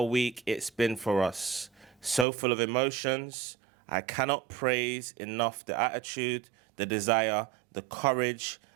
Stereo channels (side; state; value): left; drops out; at 2.2 s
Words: week it's been for us. So full of emotions. I cannot praise enough the attitude, the desire, the courage,